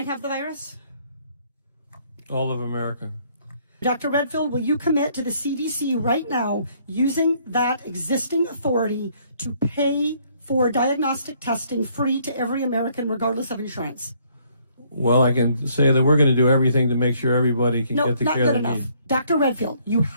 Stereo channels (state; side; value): inverted; both; correlation -0.65